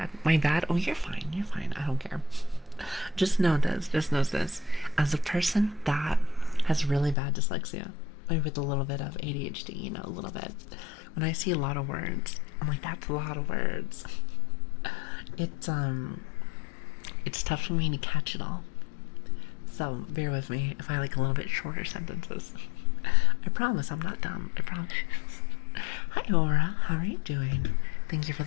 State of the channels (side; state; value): right; drops out; at 7.2 s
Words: My bad. Oh, you're fine. I don't care. Just know this. As a person that has really bad dyslexia, maybe with a little bit of ADHD, you know, a little bit, when I see a lot of words, I'm like, that's a lot of words. It's tough for me to catch it all. So bear with me if I like a little bit shorter sentences. I promise I'm not dumb. I promise. Hi, Aura. How are you doing? Thank you for